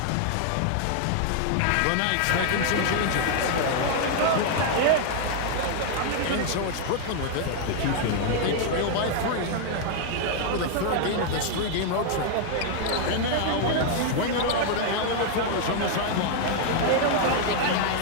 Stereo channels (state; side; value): different; both; correlation 0.00